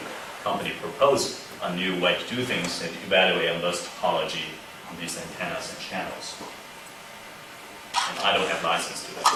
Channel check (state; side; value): identical; both; correlation 1.00